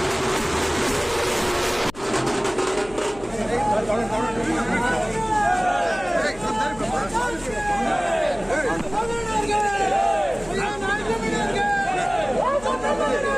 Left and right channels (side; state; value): left; noise; hum, 19 dB below the sound